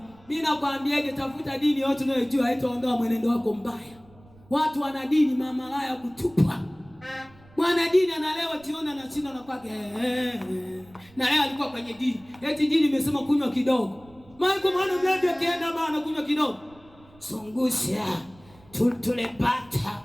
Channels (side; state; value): right; noise; rumble, 26 dB below the sound